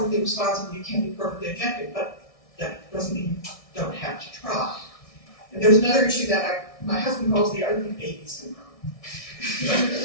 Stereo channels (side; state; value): right; late; 1.6 ms